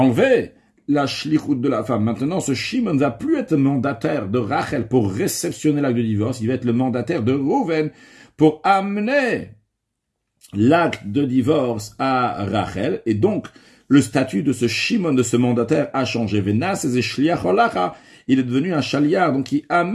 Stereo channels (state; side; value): identical; both; correlation 1.00